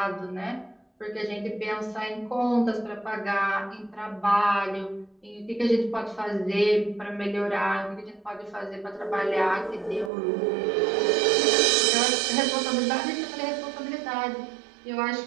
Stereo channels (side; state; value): left; drops out; at 10.1 s